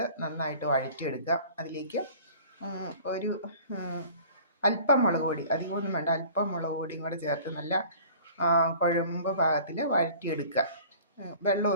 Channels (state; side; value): inverted; both; correlation -0.46